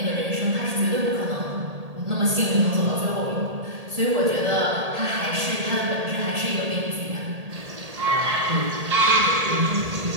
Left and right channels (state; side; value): late; left; 1.8 ms